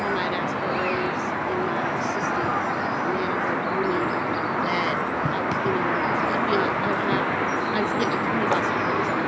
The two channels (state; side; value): identical; both; correlation 1.00